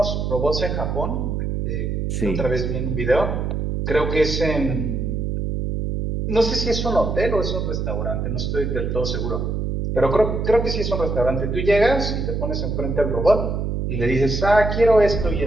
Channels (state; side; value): noise; right; hum, 1 dB below the sound